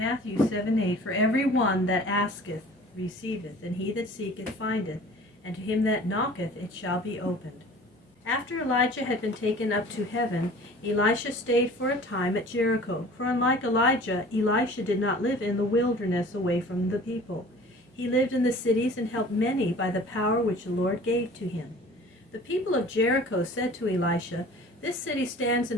7:8. For every one that asketh receiveth, and he that seeketh findeth, and to him that knocketh it shall be opened. After Elijah had been taken up to heaven, Elisha stayed for a time at Jericho. For unlike Elijah, Elisha did not live in the wilderness away from the people. He lived in the cities and helped many by the power which the Lord gave to him. The people of Jericho said to Elisha, "This city stands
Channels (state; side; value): normal; both; correlation 0.46